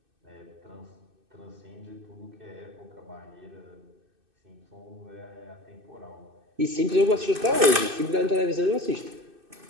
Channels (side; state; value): left; late; 2.6 ms